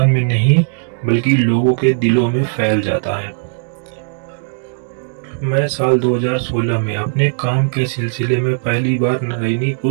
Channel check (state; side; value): silent; left; digital silence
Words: में नहीं बल्कि लोगों के दिलों में फैल जाता है। मैं साल 2016 में अपने काम के सिलसिले में पहली बार